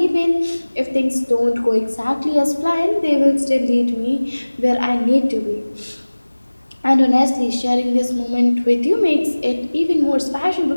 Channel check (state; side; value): inverted; both; correlation -1.00